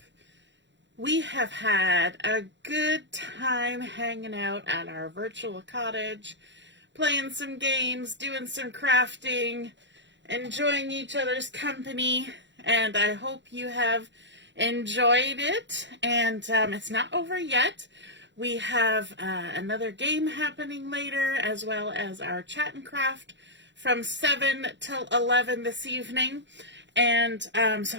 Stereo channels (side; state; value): left; late; 0.53 ms